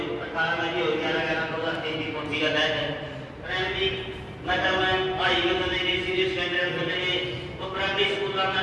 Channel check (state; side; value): identical; both; correlation 1.00